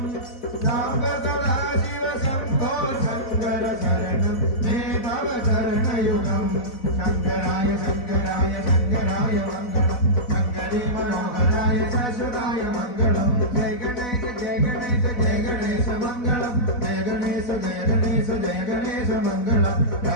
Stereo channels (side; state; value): right; late; 4.1 ms